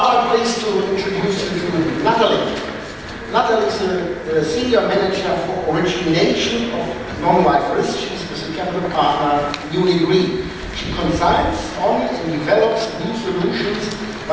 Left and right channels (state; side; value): identical; both; correlation 1.00